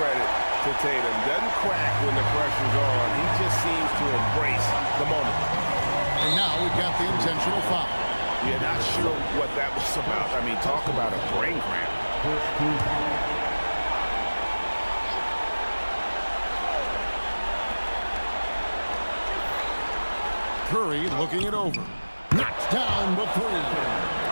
to Tatum. Doesn't crack when the pressure's on. He just seems to embrace the moment. And now we've got the intentional foul. Yeah, not sure what that was about. I mean, talk about a brain cramp. First team foul. Curry looking it over. Knocks down the three.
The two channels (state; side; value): inverted; both; correlation -1.00